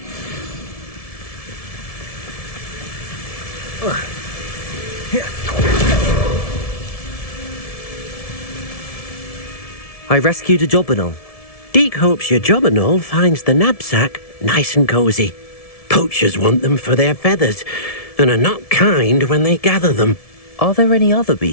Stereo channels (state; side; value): late; right; 1.7 ms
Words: I rescued a jobberknoll. Deke hopes your jobberknoll finds the knapsack nice and cosy. Poachers want them for their feathers, and are not kind when they gather them. Are there any other